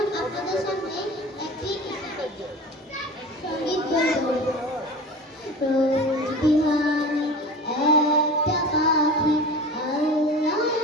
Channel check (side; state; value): both; normal; correlation 0.35